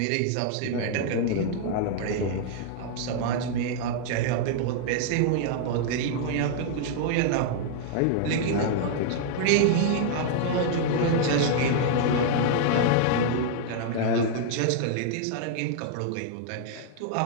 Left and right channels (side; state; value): both; different; correlation -0.01